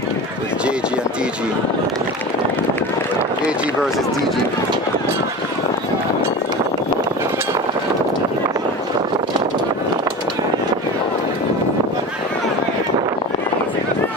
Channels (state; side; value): normal; both; correlation 0.30